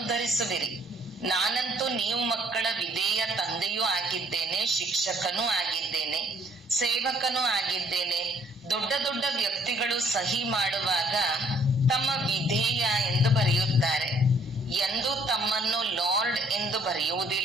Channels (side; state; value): both; normal; correlation 0.63